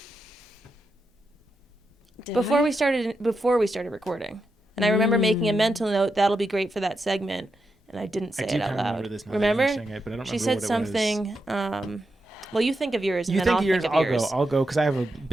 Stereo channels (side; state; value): both; normal; correlation 0.86